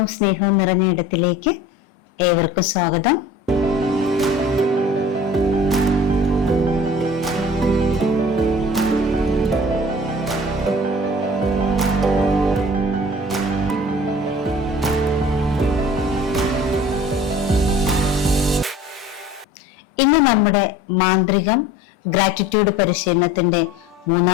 സ്നേഹവും നിറഞ്ഞ ഇടത്തിലേക്ക് ഏവർക്കും സ്വാഗതം. ഇന്ന് നമ്മുടെ മാന്ത്രികം ഗ്രാറ്റിറ്റ്യൂഡ് പരിശീലനത്തിന്റെ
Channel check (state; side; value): normal; both; correlation 0.44